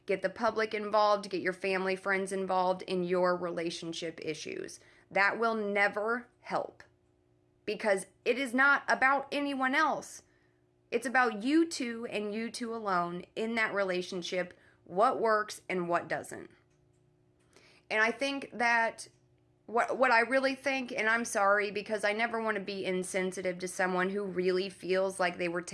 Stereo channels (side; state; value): both; identical; correlation 1.00